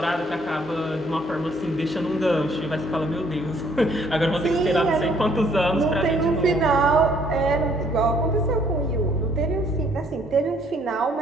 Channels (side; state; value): both; normal; correlation 0.64